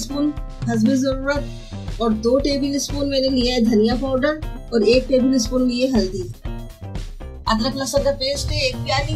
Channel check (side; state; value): both; identical; correlation 1.00